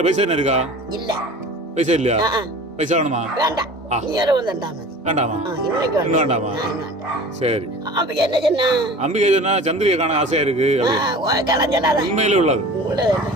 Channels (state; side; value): normal; both; correlation 0.40